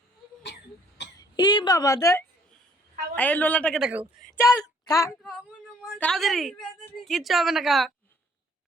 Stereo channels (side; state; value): both; normal; correlation 0.60